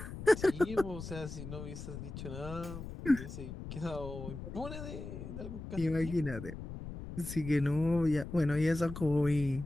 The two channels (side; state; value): left; noise; rumble, 9 dB below the sound